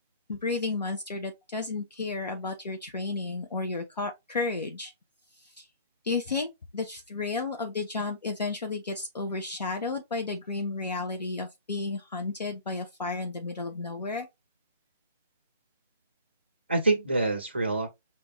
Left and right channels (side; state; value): both; inverted; correlation -0.46